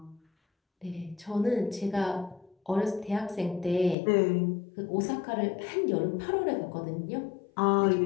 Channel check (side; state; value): right; drops out; at 4.0 s